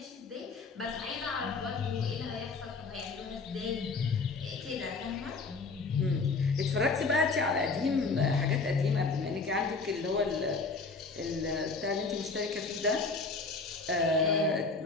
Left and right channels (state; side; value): quieter; right; 4.1 dB